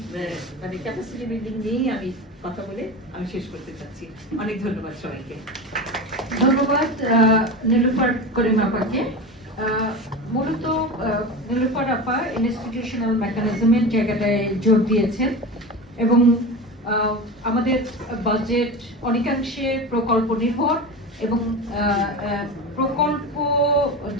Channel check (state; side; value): normal; both; correlation 0.27